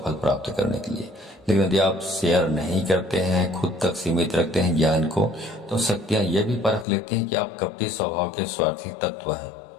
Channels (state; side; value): drops out; right; at 6.9 s